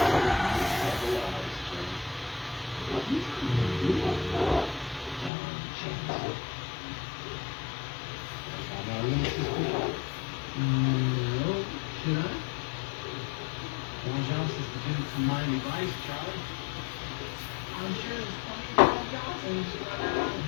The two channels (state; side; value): drops out; right; at 5.3 s